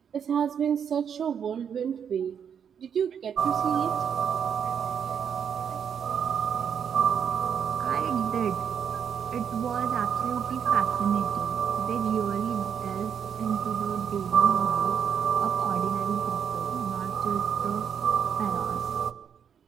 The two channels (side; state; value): left; quieter; 7.8 dB